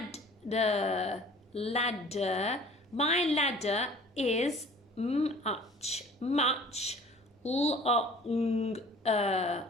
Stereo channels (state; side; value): normal; both; correlation 0.49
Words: My ladder is much longer